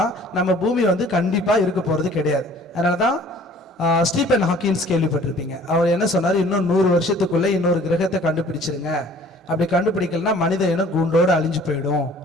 நம்ம பூமி வந்து கண்டிப்பாக இருக்க போகிறது கிடையாது. அதனால தான் ஸ்டீபன் ஹாக்கின்ஸ் கேள்விப்பட்டிருப்பீங்க. அவர் என்ன சொன்னார், இன்னும் 100 வருஷத்துக்குள்ளே இன்னொரு கிரகத்தை கண்டுபிடிச்சிருங்க, அப்படி கண்டுபிடிக்கலன்னா மனித இனம் கூண்டோடு அழிஞ்சு போயிடும்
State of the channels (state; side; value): normal; both; correlation 0.52